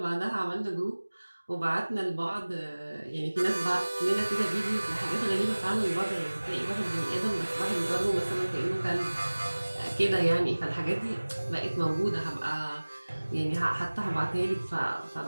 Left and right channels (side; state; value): both; inverted; correlation -1.00